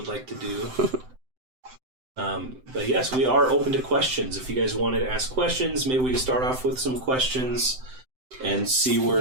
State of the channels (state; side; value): late; left; 7.8 ms